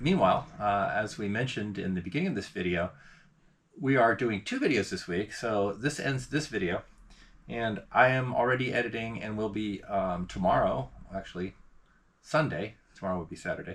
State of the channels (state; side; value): identical; both; correlation 1.00